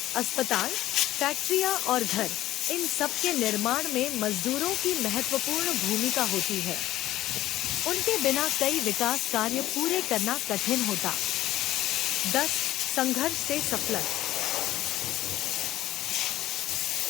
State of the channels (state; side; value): quieter; right; 14.8 dB